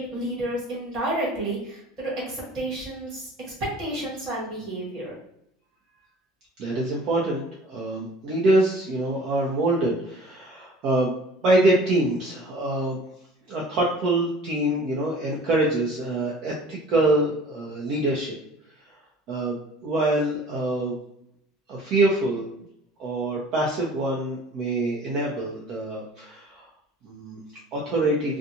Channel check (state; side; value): normal; both; correlation 0.47